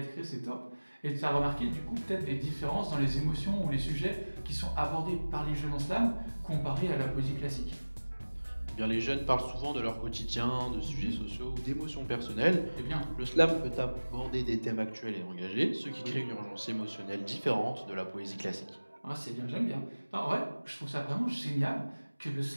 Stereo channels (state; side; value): inverted; both; correlation -1.00